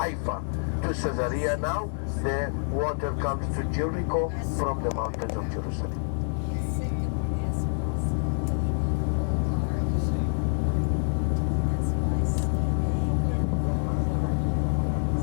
to Caesarea. Now the water comes to Jericho from the mountains of Jerusalem.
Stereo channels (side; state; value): right; silent; 60 dB below the other